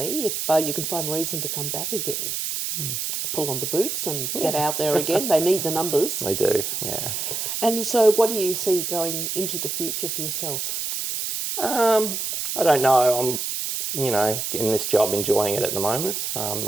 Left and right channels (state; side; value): noise; right; hiss, 3 dB below the sound